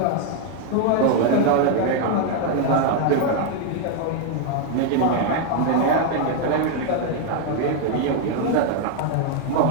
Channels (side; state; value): both; different; correlation 0.00